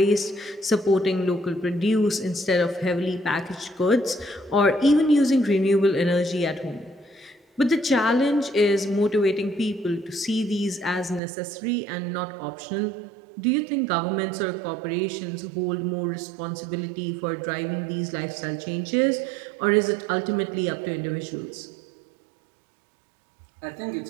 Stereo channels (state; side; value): drops out; left; at 11.2 s